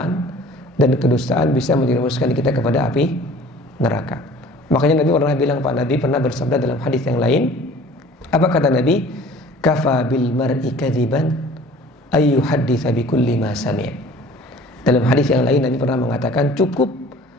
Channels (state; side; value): normal; both; correlation 0.48